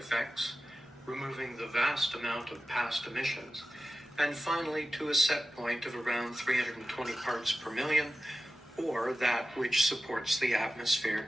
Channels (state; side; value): normal; both; correlation 0.94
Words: removing the vast amount of past emissions, and finally to a set point of around 320 parts per million, or that which supports the